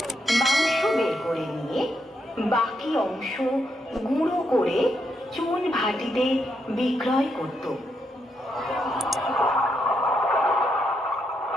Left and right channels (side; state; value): both; normal; correlation 0.80